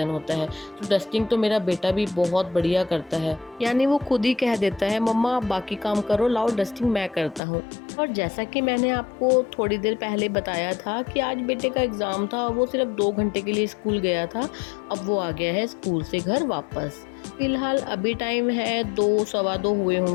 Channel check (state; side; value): drops out; right; at 7.4 s